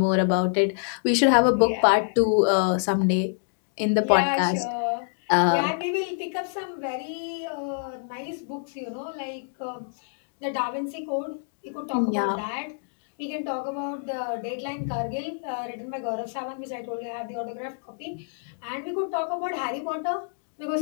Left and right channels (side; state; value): right; silent; digital silence